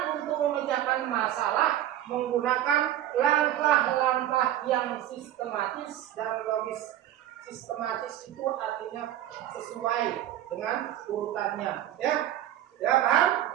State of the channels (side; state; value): left; quieter; 12.3 dB